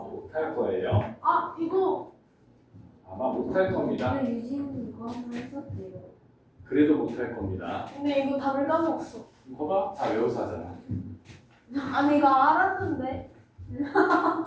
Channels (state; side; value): identical; both; correlation 1.00